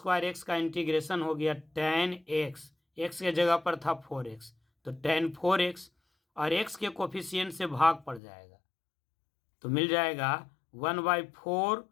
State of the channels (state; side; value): drops out; right; at 8.2 s